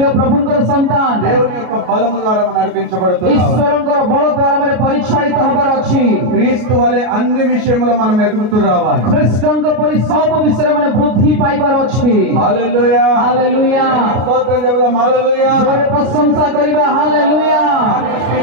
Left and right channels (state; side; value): late; left; 33 ms